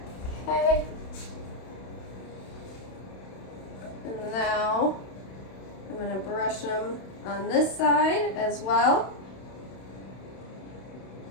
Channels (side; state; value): right; late; 31 ms